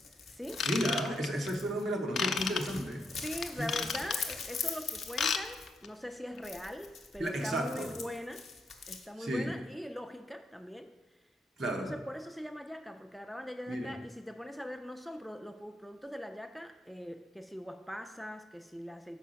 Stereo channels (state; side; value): normal; both; correlation 0.80